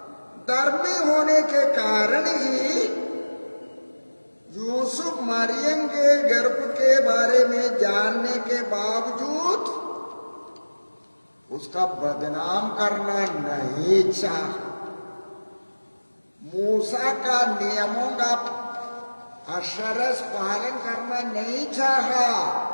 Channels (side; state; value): both; inverted; correlation -1.00